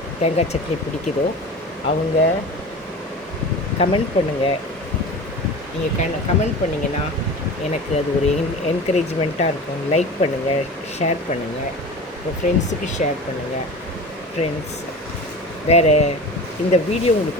தேங்காய் சட்னி பிடிக்குதோ அவங்க கமெண்ட் பண்ணுங்கள். நீங்கள் கமெண்ட் பண்ணிங்கன்னா எனக்கு அது ஒரு என்கரேஜ்மெண்ட்டாக இருக்கும். லைக் பண்ணுங்கள், ஷேர் பண்ணுங்கள், உங்கள் ஃப்ரெண்ட்ஸுக்கு ஷேர் பண்ணுங்கள். ஃப்ரெண்ட்ஸ், வேறு இந்த வீடியோ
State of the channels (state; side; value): normal; both; correlation 0.34